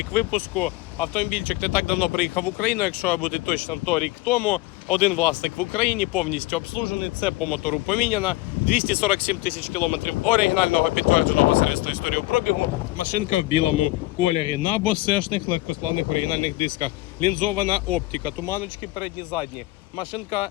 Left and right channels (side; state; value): right; quieter; 19.2 dB